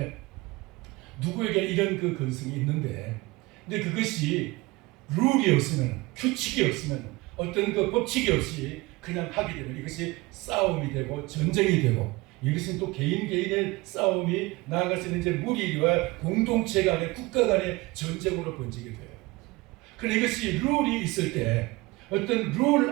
누구에게 이런 그 근성이 있는데 근데 그것이 룰이 없으면 규칙이 없으면 어떤 그 법칙이 없이 그냥 하게 되면 이것이 싸움이 되고 전쟁이 되고 이것은 또 개인의 싸움이 나아가서는 이제 무리와 공동체 간의 국가 간의 전쟁으로 번지게 돼요. 그런데 이것이 룰이 있을 때 어떤 룰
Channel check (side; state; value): left; quieter; 22.4 dB